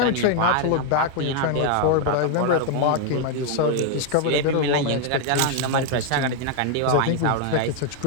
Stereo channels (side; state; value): both; different; correlation 0.00